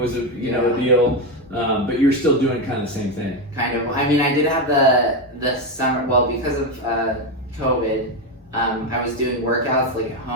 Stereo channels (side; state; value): both; normal; correlation 0.11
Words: a deal, but you're still doing kind of the same thing. Kind of. I mean, I did have the summer. Well, because of COVID, I was doing workouts like at